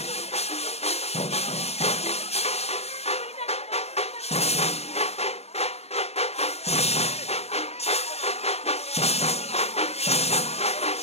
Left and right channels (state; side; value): late; right; 0.30 ms